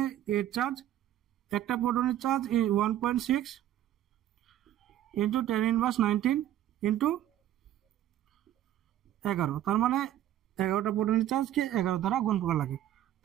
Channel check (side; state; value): left; quieter; 12.3 dB